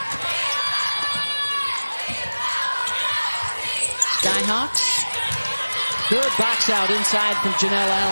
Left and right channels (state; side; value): inverted; both; correlation -1.00